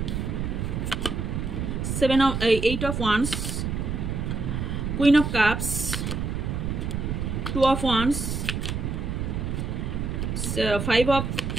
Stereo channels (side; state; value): right; noise; rumble, 2 dB below the sound